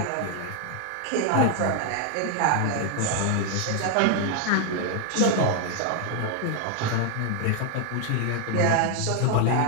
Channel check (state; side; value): different; both; correlation 0.00